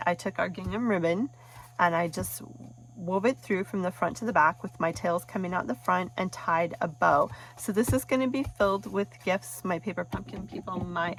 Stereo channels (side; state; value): both; identical; correlation 1.00